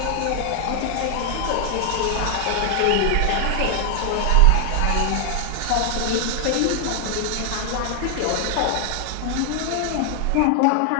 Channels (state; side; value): different; both; correlation 0.00